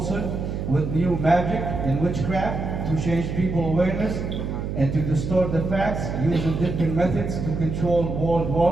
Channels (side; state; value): right; noise; hum, 4 dB below the sound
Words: with new magic and witchcraft to change people's awareness and to distort the facts using different methods to control world